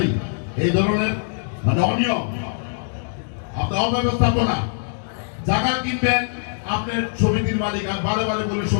এই ধরনের মানে অনিয়ম, আপনার অব্যবস্থাপনা। জায়গা কিনবেন আপনার সমিতির মালিক, আর বারে বলে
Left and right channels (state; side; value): silent; right; digital silence